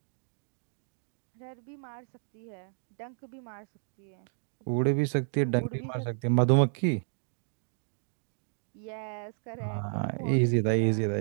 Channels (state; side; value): silent; left; digital silence